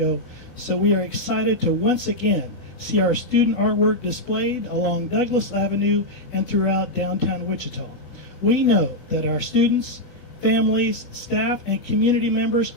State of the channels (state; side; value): normal; both; correlation -0.02